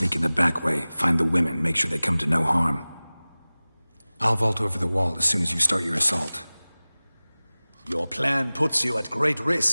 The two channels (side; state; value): both; inverted; correlation -0.99